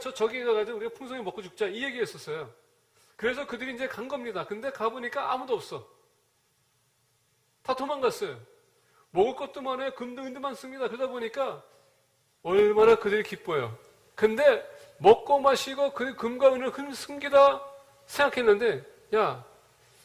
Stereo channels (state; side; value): identical; both; correlation 1.00